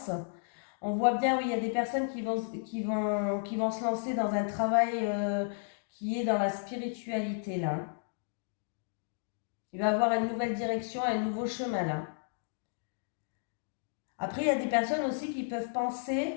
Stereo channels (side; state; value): right; silent; digital silence